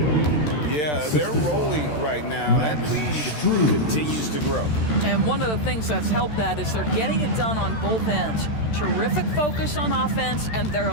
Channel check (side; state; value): right; late; 13 ms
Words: Yeah, they're rolling right now. That lead continues to grow. And one of the things that's helped that is they're getting it done on both ends. Terrific focus on offense, and